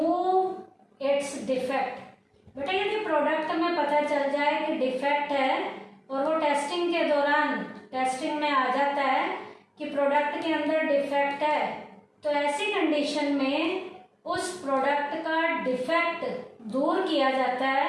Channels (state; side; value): identical; both; correlation 1.00